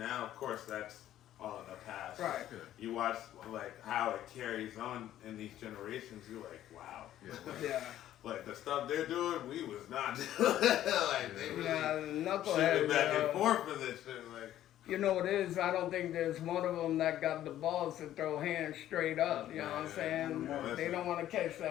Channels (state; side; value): quieter; right; 12.5 dB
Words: of course that's all in the past. Right. You watch like how it carries on in these generations, you're like, wow. Yeah. Like the stuff they're doing, we was not doing. Like they really shooting back and forth for this shit. Like, you know what it is? I don't think there's one of them that got the balls to throw hands straight up. You know what I'm saying? They don't want to catch